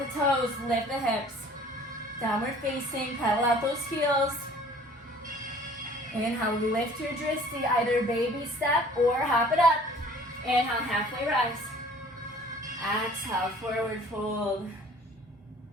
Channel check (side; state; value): both; normal; correlation 0.51